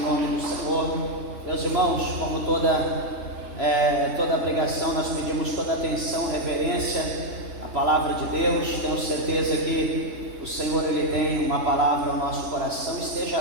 do Senhor. Meus irmãos, como toda pregação, nós pedimos toda atenção, reverência à palavra de Deus. Tenho certeza que o Senhor, Ele tem uma palavra ao nosso coração. Esteja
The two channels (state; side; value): late; left; 3.3 ms